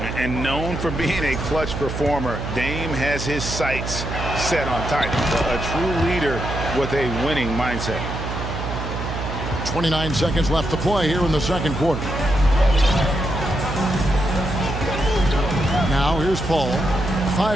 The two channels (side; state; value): right; noise; hum, 5 dB below the sound